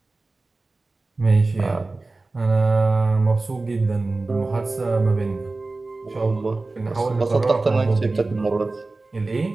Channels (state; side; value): quieter; left; 3.4 dB